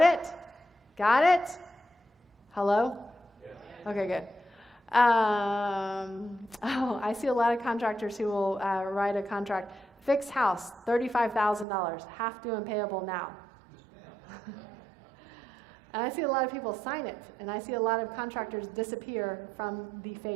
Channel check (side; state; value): left; drops out; at 11.7 s